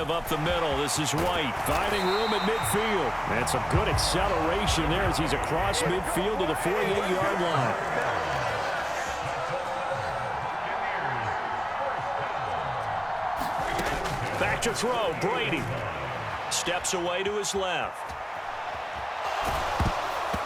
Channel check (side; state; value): both; identical; correlation 1.00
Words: up the middle. This is White finding room at midfield. And some good acceleration there as he's across midfield to the 48-yard line. Back to throw. Brady steps away to his left.